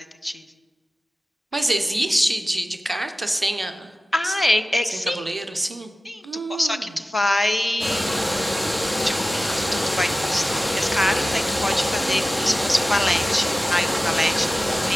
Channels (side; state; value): both; normal; correlation 0.96